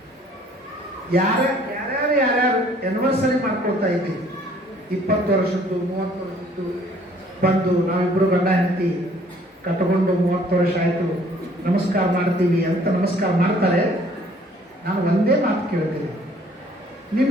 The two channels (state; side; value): normal; both; correlation 0.58